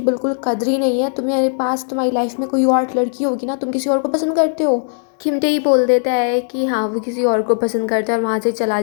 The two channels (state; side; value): silent; right; digital silence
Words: बिल्कुल कदर ही नहीं है। तुम्हारे पास तुम्हारी लाइफ में कोई और लड़की होगी ना, तुम किसी और को पसंद करते हो। किम टेही बोल देता है कि हाँ वो किसी और को पसंद करता है और वहाँ से चला